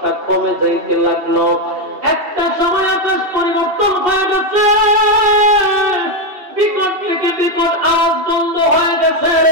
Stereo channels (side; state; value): left; late; 2.7 ms